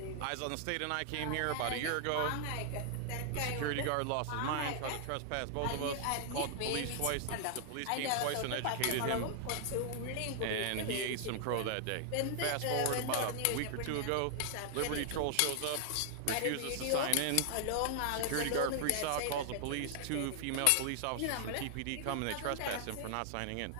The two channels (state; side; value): different; both; correlation 0.00